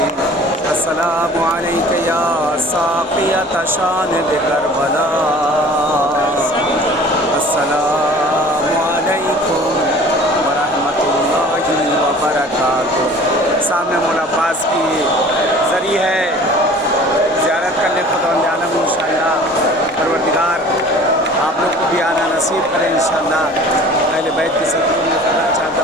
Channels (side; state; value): both; normal; correlation 0.46